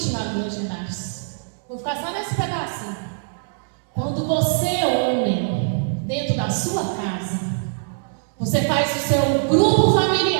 lá dos Legendários. Vou ficar só nesse pedacinho. Quando você, homem, dentro da sua casa, você faz o seu grupo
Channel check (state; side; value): silent; left; 64 dB below the other